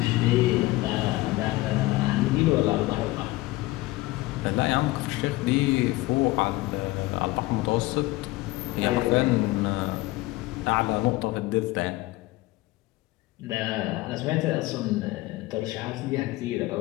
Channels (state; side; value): quieter; right; 19.4 dB